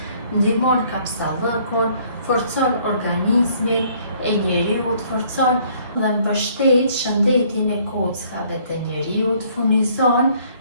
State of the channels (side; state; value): both; inverted; correlation -0.62